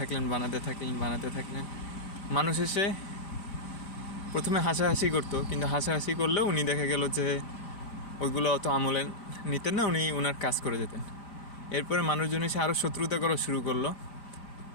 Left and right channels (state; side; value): late; right; 5.0 ms